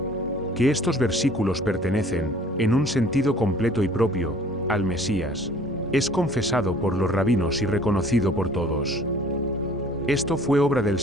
Que estos versículos pertenecen, en un sentido completo y propio, al Mesías, es confesado por los rabinos y reconocido por todos. Esto fue obra del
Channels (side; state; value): both; normal; correlation 0.53